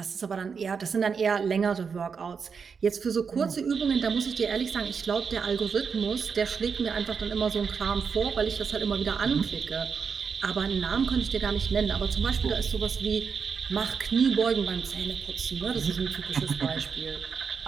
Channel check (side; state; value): left; quieter; 5.9 dB